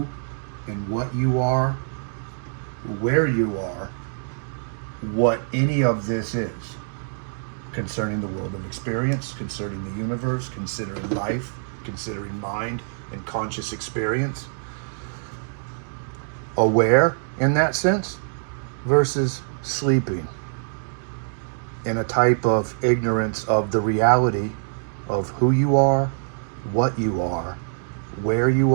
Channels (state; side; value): silent; left; digital silence